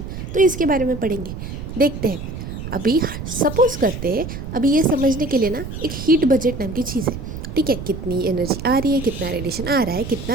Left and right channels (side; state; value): right; noise; rumble, 8 dB below the sound